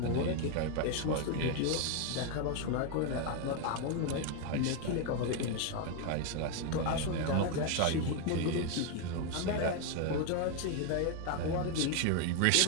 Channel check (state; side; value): different; both; correlation 0.01